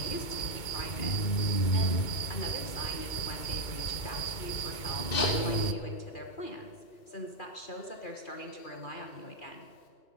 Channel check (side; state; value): right; late; 2.2 ms